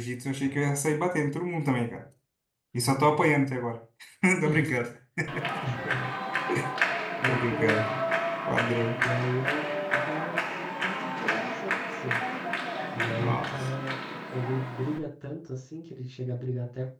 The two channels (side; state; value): both; identical; correlation 1.00